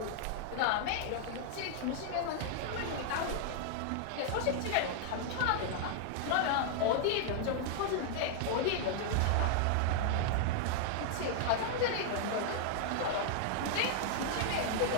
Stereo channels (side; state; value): both; different; correlation -0.01